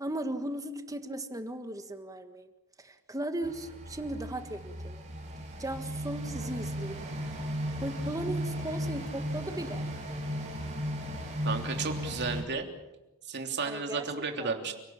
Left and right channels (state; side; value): normal; both; correlation 0.54